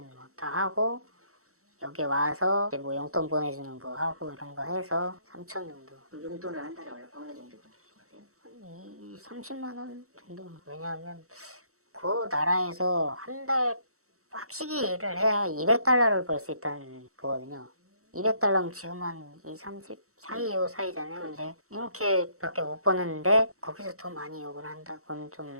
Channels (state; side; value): late; left; 0.64 ms